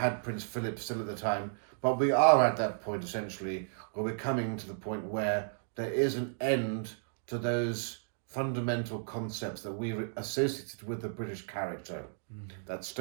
Prince Philip still at the time. But we are at that point, essentially, where we're coming to the point where there is an end to those fundamental concepts that we associated with the British character. That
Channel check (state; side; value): silent; left; digital silence